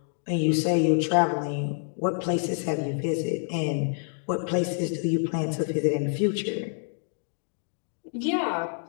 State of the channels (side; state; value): right; silent; 56 dB below the other